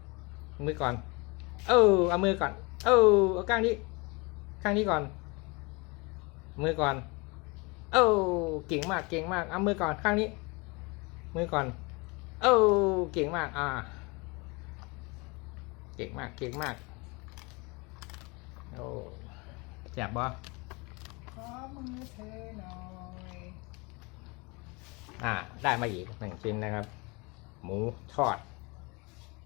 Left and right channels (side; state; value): right; quieter; 27.8 dB